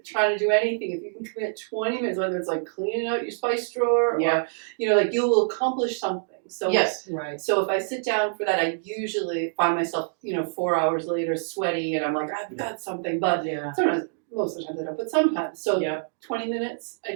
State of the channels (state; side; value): silent; left; digital silence